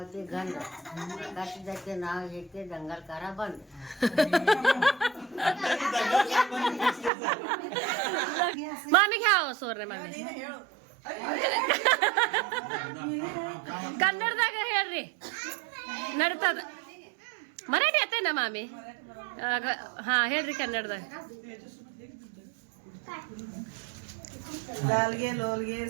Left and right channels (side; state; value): left; drops out; at 7.1 s